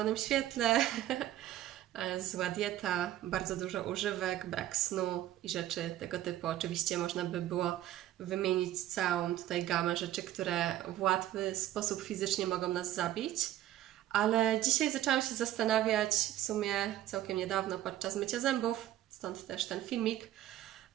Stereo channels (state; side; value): quieter; left; 13.3 dB